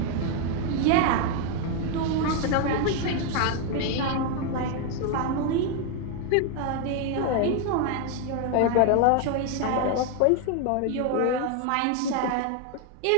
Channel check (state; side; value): different; both; correlation 0.01